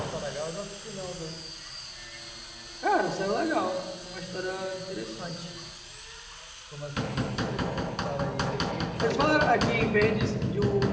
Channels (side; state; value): both; identical; correlation 1.00